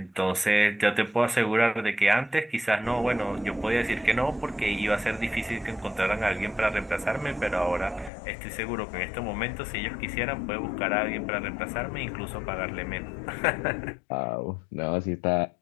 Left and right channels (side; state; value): right; drops out; at 8.1 s